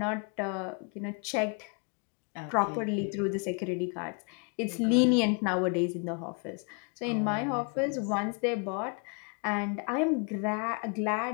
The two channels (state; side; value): quieter; right; 36.3 dB